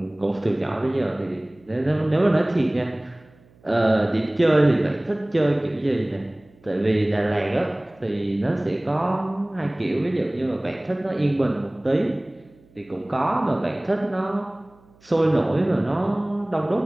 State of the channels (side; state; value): right; noise; hum, 29 dB below the sound